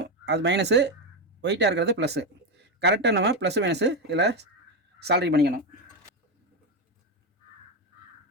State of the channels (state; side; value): normal; both; correlation 0.10